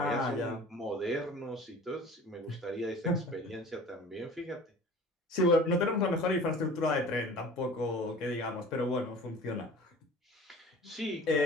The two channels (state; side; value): normal; both; correlation 0.43